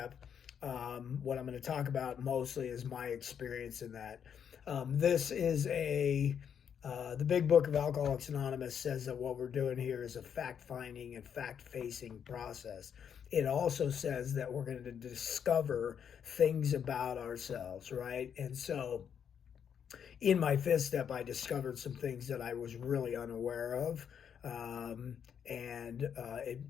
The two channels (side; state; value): right; quieter; 8.0 dB